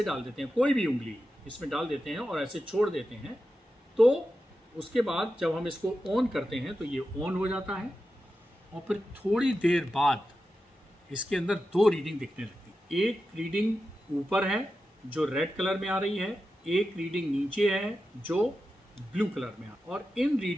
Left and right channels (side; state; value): both; normal; correlation 0.91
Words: डाल देते हैं, कोई भी उंगली इसमें डाल देते हैं और ऐसे छोड़ देते हैं, तो उसके बाद जब हम इसको ऑन करते हैं तो ये ऑन हो जाता है और फिर थोड़ी देर बाद इसके अंदर 2 रीडिंग दिखने लगती है। एक रीडिंग ऊपर है जो रेड कलर में आ रही है, एक रीडिंग नीचे है जो ब्लू कलर में आ। और इन